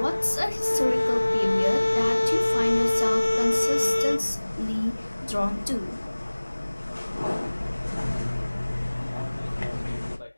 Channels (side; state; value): both; inverted; correlation -1.00